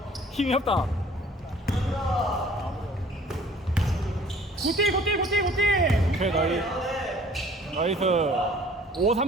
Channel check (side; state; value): both; normal; correlation 0.52